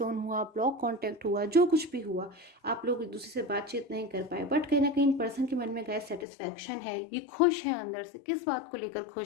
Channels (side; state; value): right; drops out; at 6.2 s